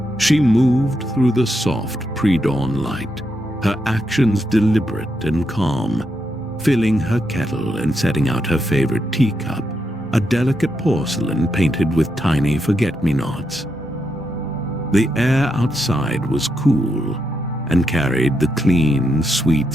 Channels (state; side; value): normal; both; correlation 0.82